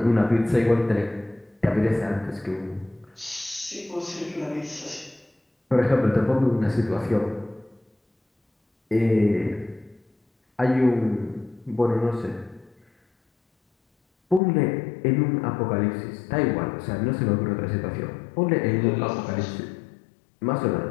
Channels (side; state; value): right; drops out; at 14.4 s